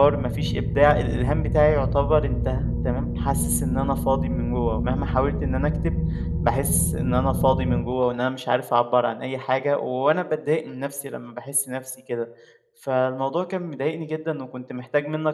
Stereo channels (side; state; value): both; identical; correlation 1.00